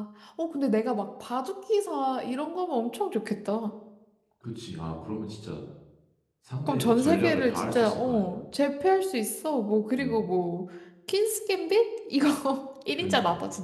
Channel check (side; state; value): both; identical; correlation 1.00